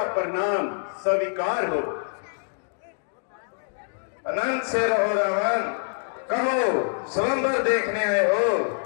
प्रणाम स्वीकार हो। अनंत से रहो रावण, कहो स्वयंवर देखने आए हो?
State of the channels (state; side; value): silent; right; digital silence